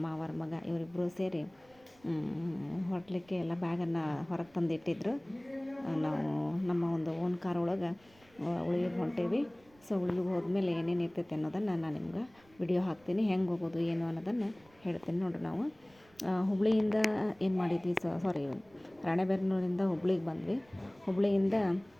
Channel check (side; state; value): right; noise; rumble, 30 dB below the sound